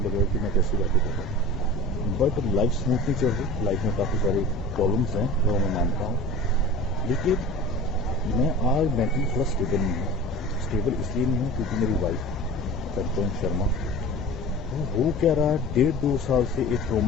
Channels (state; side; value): normal; both; correlation 0.37